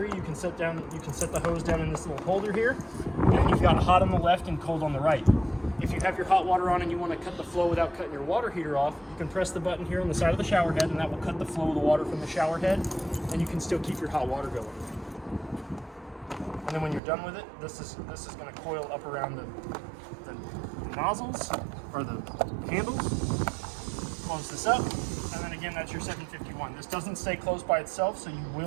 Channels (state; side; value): drops out; left; at 17.0 s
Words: you can set the hose down in this little holder here. And you've got hot on the left and cold on the right. If you have your hot water on and you want to cut the flow without cutting your water heater off, you can press the button here on the side of the shower head, and that will cut the flow of the water from the shower head, and you can still keep your hot water going. And then when you're done with it, this is going to coil up around the nozzles or the handles. Close this up, and then again, that's your 751. This doesn't stay closed by itself, so you